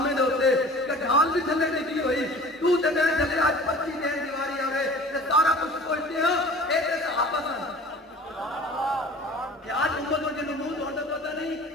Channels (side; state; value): both; normal; correlation 0.43